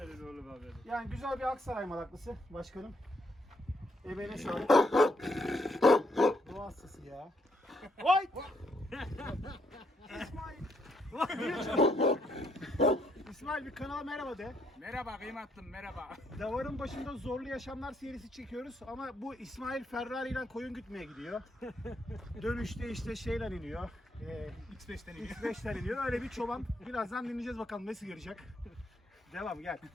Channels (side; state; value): both; normal; correlation 0.74